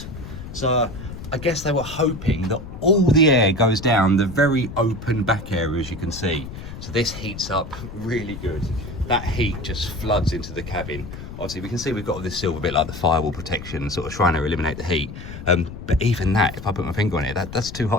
So I guess they were hoping that all the air goes down the very open back area, as you can see. So this heats up really good. That heat just floods into the cabin. Obviously we can see we've got all this silver bit like the firewall protection, sort of trying to eliminate the heat. But even that, if I put my finger on it, that's too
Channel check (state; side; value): noise; left; rumble, 11 dB below the sound